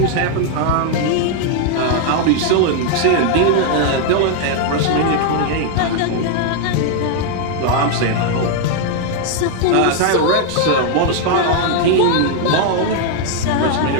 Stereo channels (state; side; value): different; both; correlation 0.00